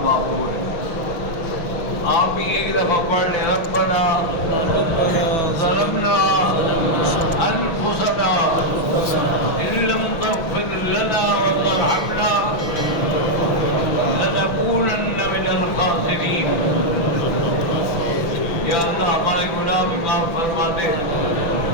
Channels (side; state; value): right; late; 6.2 ms